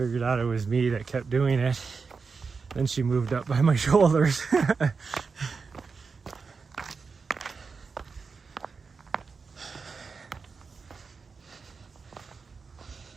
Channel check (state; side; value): quieter; left; 5.0 dB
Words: out it was me that kept doing it, then she moved up by my shoulders. The